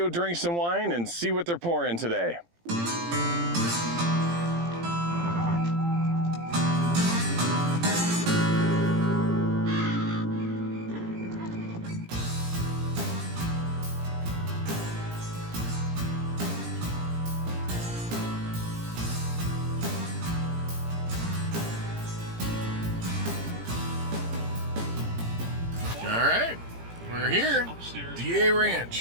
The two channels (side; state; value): left; late; 17 ms